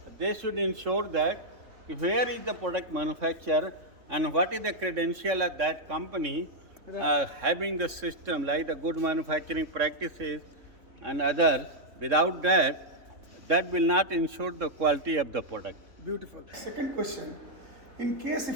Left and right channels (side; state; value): left; late; 3.6 ms